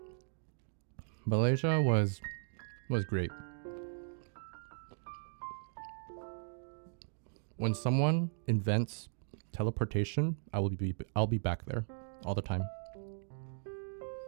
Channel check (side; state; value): left; silent; digital silence